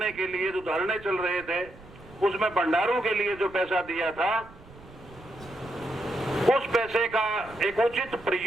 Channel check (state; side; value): noise; right; rumble, 21 dB below the sound